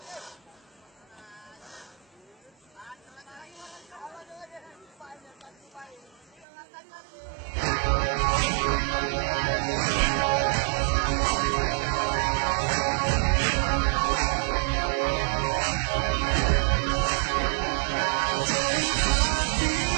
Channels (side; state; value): left; drops out; at 6.5 s